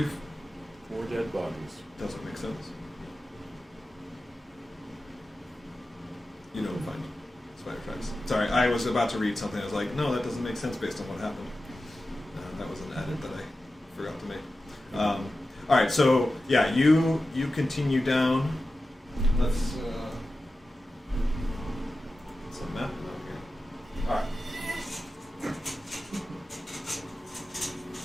4 dead bodies. Doesn't make sense. You don't find spider tracks. Sorry, I was about to read something. I was like, no, that doesn't make sense based on what happened. That was an edit that I forgot to make. All right, so yeah, you continue down. Let's a map out here. All right.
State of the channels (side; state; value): both; normal; correlation 0.93